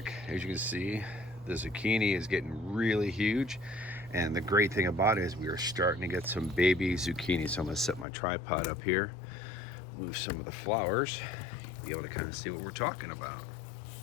as you can see, the zucchini is getting really huge, and the great thing about it is we are starting to get some baby zucchini. So I'm going to set my tripod up here, move some of the flowers, be able to kind of see what we're talking about.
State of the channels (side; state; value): right; drops out; at 8.1 s